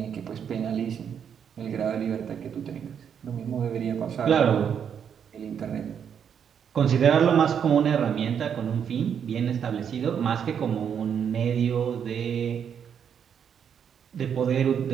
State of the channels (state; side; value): quieter; left; 7.9 dB